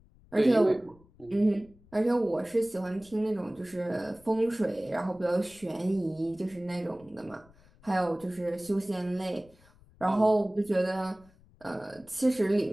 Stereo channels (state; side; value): noise; left; rumble, 27 dB below the sound